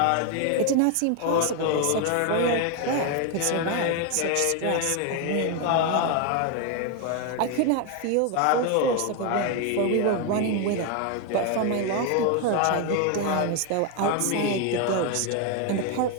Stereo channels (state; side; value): different; both; correlation 0.01